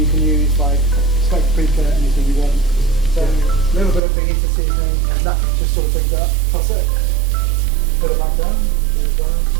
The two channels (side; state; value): left; drops out; at 4.0 s